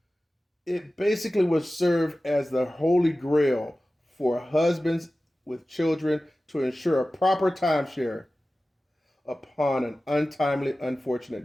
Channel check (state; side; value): normal; both; correlation 0.96